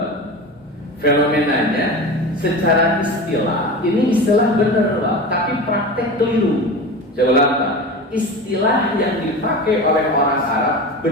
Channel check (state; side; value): normal; both; correlation 0.29